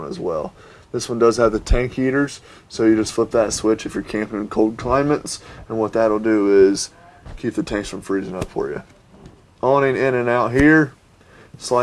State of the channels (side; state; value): both; identical; correlation 1.00